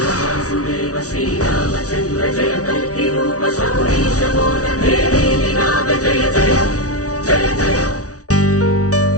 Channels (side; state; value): right; late; 0.67 ms